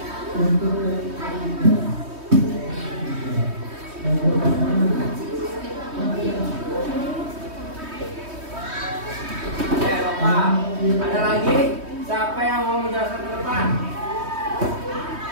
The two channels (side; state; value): left; late; 3.2 ms